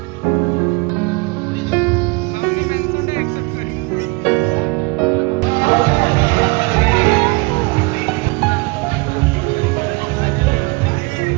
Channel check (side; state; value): left; quieter; 26.9 dB